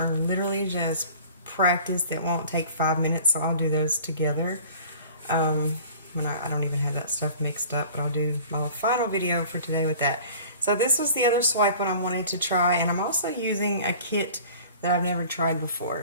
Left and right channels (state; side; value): inverted; both; correlation -0.45